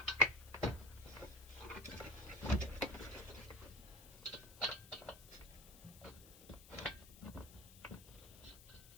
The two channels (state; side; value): noise; left; hiss, 18 dB below the sound